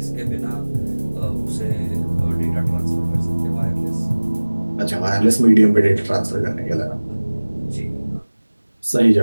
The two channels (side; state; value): both; inverted; correlation -1.00